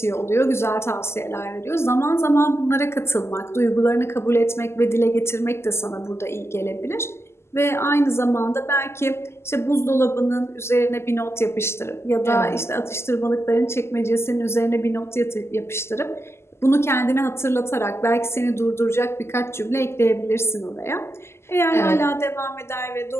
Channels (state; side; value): late; right; 0.12 ms